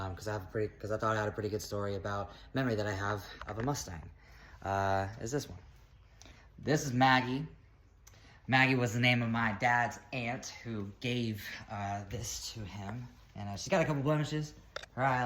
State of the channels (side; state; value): both; identical; correlation 1.00